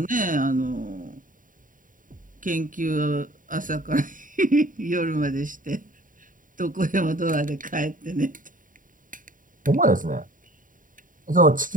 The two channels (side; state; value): left; late; 0.39 ms